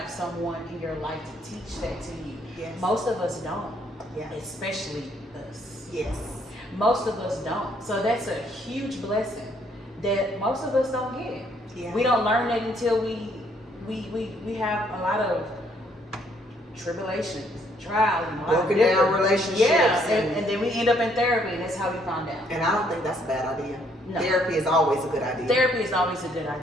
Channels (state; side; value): normal; both; correlation 0.67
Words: someone in your life to teach that to you. Yes. Most of us don't. Yeah. Especially us. Yes. Most of us don't. So that's a huge blessing that most of us don't get. Yeah. We don't learn that until we have a lot of tribulations, trials, and broken down relationships. Yeah, and then we end up in therapy, and that's how we found out. And I don't think that's a bad idea. No. Therapy is always a good idea. Therapy is always a good